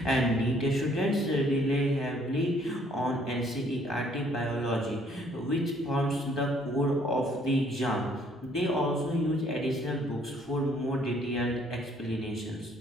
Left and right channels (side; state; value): both; normal; correlation 0.63